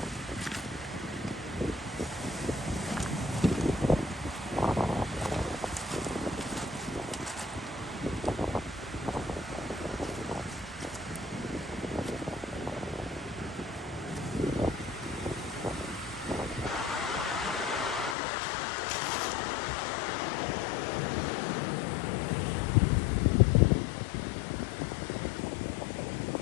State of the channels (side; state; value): right; drops out; at 18.2 s